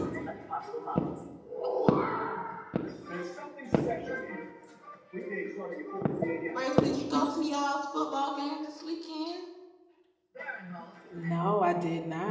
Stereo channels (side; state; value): both; identical; correlation 1.00